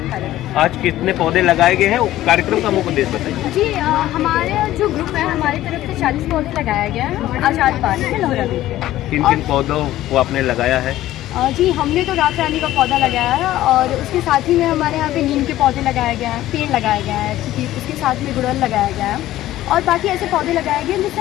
कार्यरत। आज कितने पौधे लगाए गए हैं? कार्यक्रम का मुख्य उद्देश्य बताइए। जी हमारे जो ग्रुप है, हमारी तरफ से 40 पौधे लगाया गया है आजाद पार्क में लोहरा में। किन किन पौधों को आपने लगाया है? जी हमने तो रात रानी का पौधा लगाया है और उसके साथ ही में हमारे यहाँ पे नीम के पौधे लगाए गए हैं, पेड़ लगाया गया है, उसके साथ में गुड़हल लगाया गया है और बाकी ऐसे पौधे लगाए गए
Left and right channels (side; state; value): right; quieter; 14.5 dB